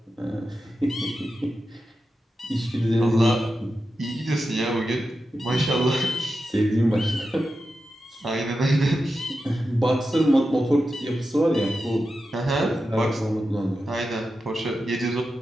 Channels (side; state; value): both; normal; correlation 0.90